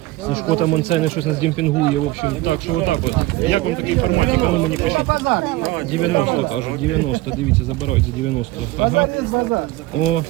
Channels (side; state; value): left; quieter; 18.2 dB